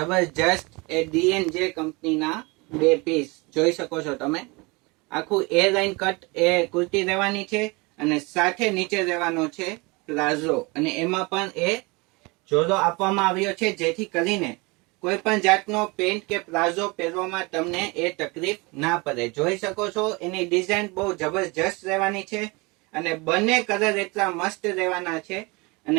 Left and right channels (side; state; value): left; quieter; 26.6 dB